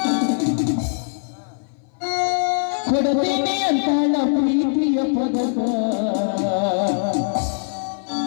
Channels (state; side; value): silent; right; 58 dB below the other